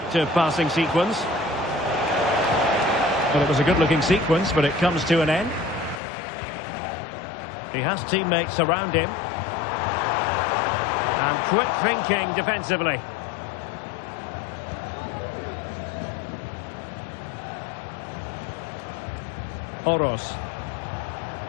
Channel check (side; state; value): right; drops out; at 6.0 s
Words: passing sequence. Well, it was a good-looking sequence, but it comes to an end. He has teammates around him. And quick thinking defensively. Oros.